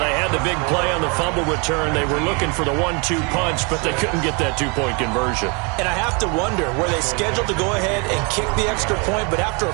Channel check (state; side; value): quieter; left; 32.6 dB